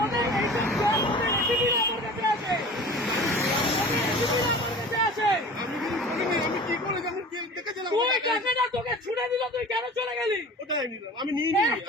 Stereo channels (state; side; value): normal; both; correlation 0.40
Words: তোকে ছুড়ে দিল, তুই কেন চলে গেলি? আমি নিইনি,